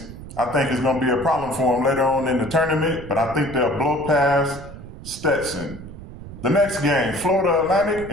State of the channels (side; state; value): right; noise; rumble, 14 dB below the sound